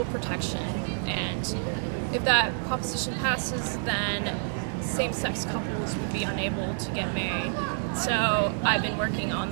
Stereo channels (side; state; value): left; silent; digital silence